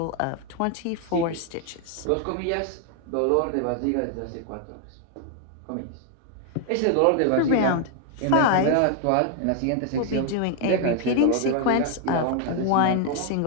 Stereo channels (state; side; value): different; both; correlation 0.00